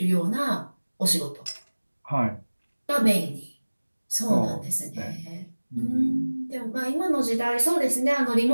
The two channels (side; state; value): both; inverted; correlation -1.00